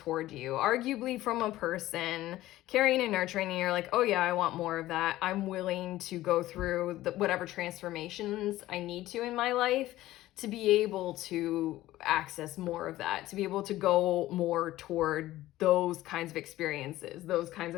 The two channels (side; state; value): right; quieter; 15.8 dB